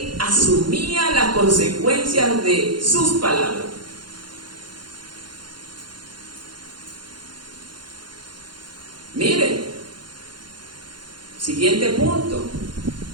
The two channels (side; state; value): left; late; 0.71 ms